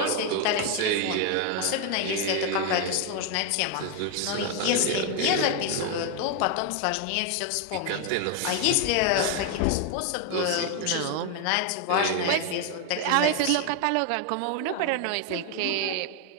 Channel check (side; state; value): both; different; correlation 0.01